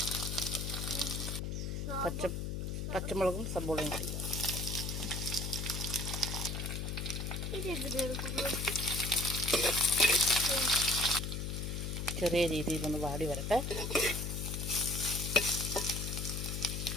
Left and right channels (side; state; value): left; noise; hum, 3 dB below the sound